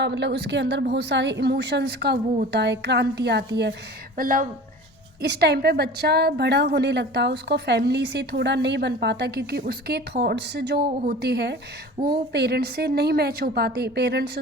मतलब उसके अंदर बहुत सारे इमोशंस का वो होता है, क्रांति आती है। मतलब इस टाइम पे बच्चा बड़ा होने लगता है, उसको फैमिली से थोड़ा नहीं बन पाता क्योंकि उसके थॉट्स जो होते हैं वो पेरेंट्स से नहीं मैच हो पाते। पेरेंट्स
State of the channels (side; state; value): both; normal; correlation 0.39